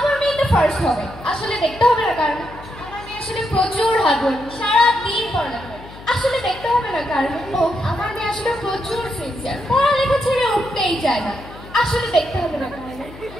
মেয়ে তো ফার্স্ট হবে আসলে দেখতে হবে না কারণ আমার মেয়ে আসলে প্রচুর হার্ডওয়ার্ক সারাদিন পড়ালেখা করে আসলে দেখতে হবে না কারণ ও আমার মেয়ে আসলে প্রচুর সিনসিয়ার পড়ালেখা ছেড়ে উঠতেই চায় না আসলে দেখতে হবে না কারণ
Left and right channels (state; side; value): noise; left; hum, 17 dB below the sound